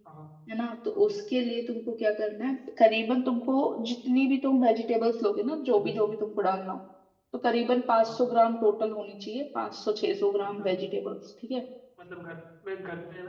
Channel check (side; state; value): both; identical; correlation 1.00